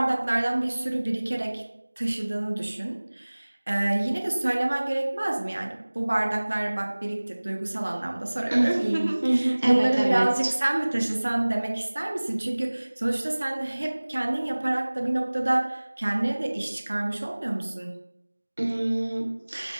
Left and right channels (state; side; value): inverted; both; correlation -1.00